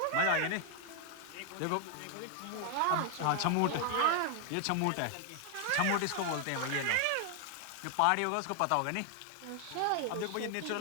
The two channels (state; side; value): different; both; correlation 0.00